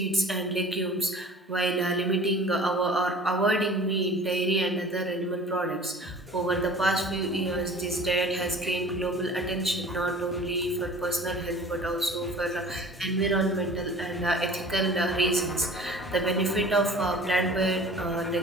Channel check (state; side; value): normal; both; correlation 0.45